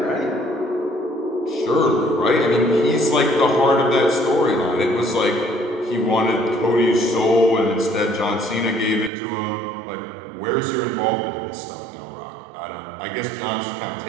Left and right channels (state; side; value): drops out; left; at 9.1 s